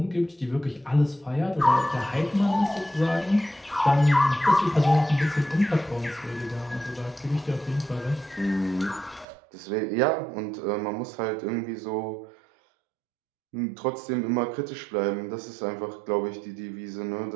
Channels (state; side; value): drops out; left; at 9.2 s